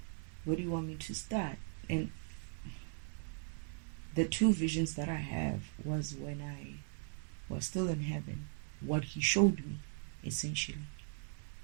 where do you want me to start? And the two visions that I have was when I was still in heaven, what he showed me, essentially.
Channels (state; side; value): silent; left; 52 dB below the other